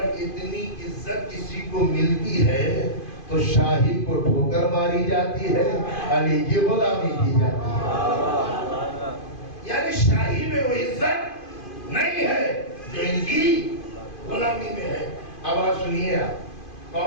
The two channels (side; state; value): right; late; 2.5 ms